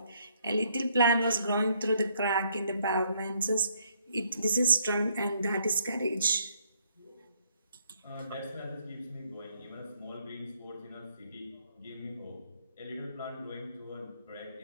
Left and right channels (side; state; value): both; inverted; correlation -0.69